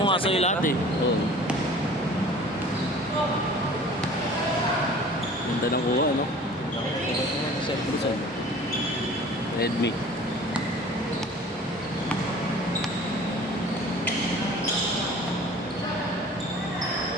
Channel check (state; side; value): normal; both; correlation 0.45